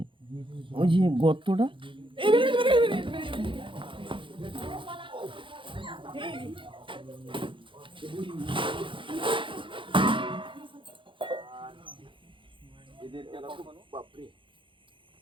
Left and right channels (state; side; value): late; left; 0.25 ms